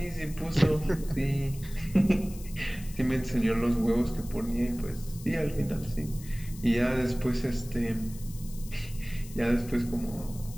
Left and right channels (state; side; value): noise; left; hiss, 18 dB below the sound